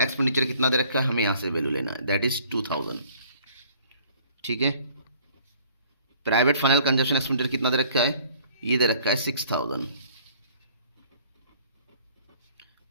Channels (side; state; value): both; inverted; correlation -0.55